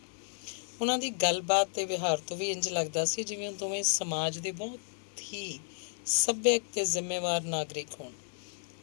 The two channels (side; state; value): right; silent; digital silence